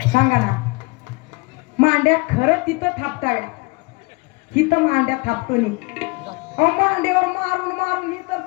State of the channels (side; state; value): right; quieter; 27.2 dB